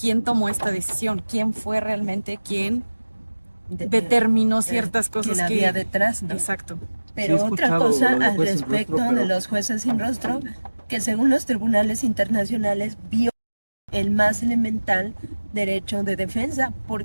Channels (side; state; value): both; inverted; correlation -1.00